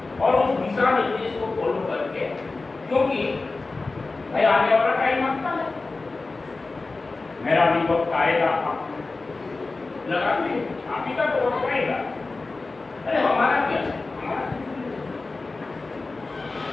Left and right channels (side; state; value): right; quieter; 3.6 dB